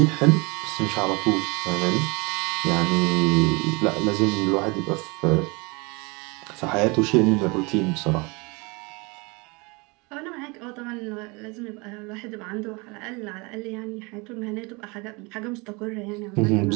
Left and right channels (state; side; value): quieter; left; 27.8 dB